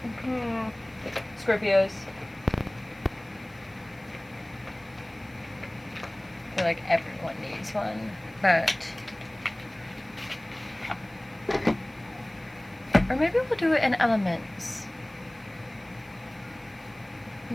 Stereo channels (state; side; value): noise; left; hiss, 30 dB below the sound